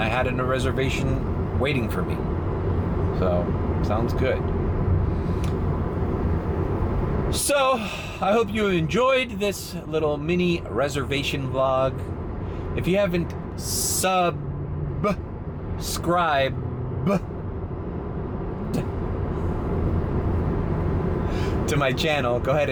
had a reservation waiting for me. So, sounds good. So, I hope you enjoyed this little mini reservation vlog. If you haven't subscribed to my channel, go ahead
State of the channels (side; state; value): both; identical; correlation 1.00